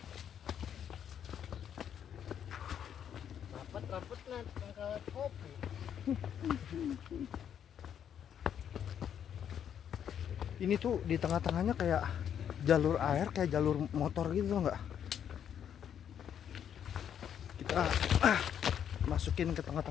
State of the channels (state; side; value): quieter; right; 9.0 dB